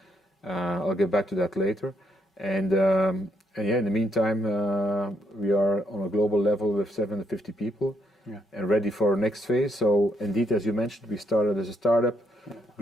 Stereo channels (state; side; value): normal; both; correlation 0.75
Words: I'll get back to that later. And yeah, in the meantime, we are on a global level with 750 people and ready for our next phase. So indeed, as you mentioned, we started as a startup,